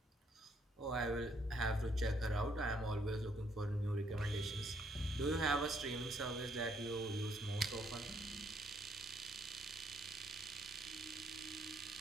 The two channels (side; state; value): both; normal; correlation 0.70